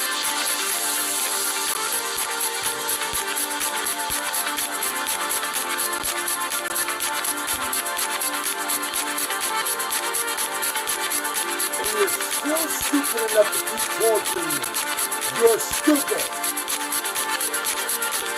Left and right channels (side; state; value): both; identical; correlation 1.00